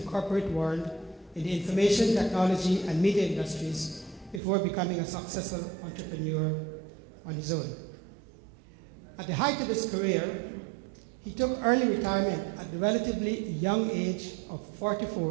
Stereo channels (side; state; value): left; drops out; at 4.4 s